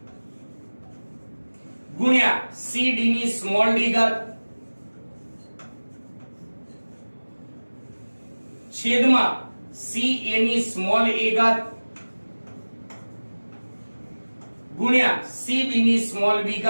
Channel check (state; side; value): inverted; both; correlation -1.00